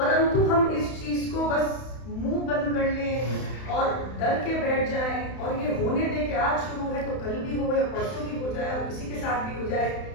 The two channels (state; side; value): late; right; 31 ms